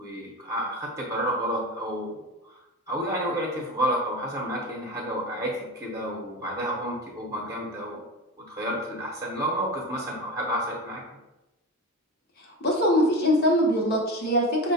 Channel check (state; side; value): normal; both; correlation 0.25